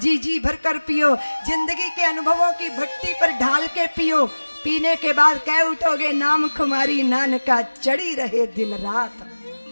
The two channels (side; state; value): both; inverted; correlation -1.00